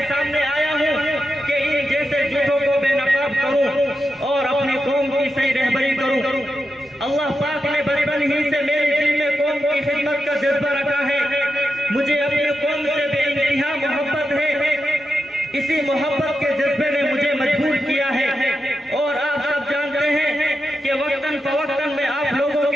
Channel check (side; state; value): both; normal; correlation 0.88